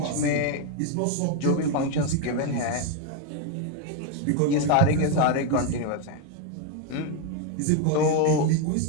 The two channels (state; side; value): different; both; correlation 0.02